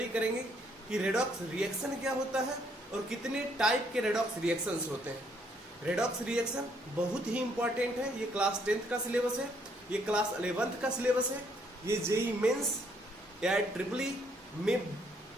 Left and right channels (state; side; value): normal; both; correlation 0.69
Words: करेंगे कि रेडॉक्स रिएक्शन क्या होता है और कितने टाइप के रेडॉक्स रिएक्शंस होते हैं। रेडॉक्स रिएक्शन बहुत ही इंपॉर्टेंट है। ये क्लास 10th का सिलेबस है, ये क्लास 11th का सिलेबस है, ये जेई मेंस या ट्रिपली में